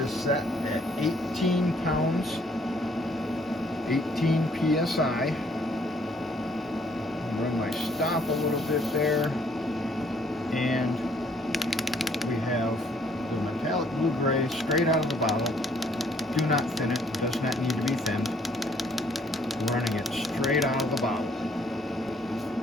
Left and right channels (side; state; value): both; normal; correlation 0.64